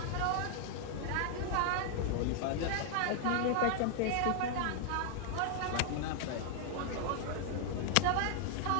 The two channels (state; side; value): different; both; correlation 0.00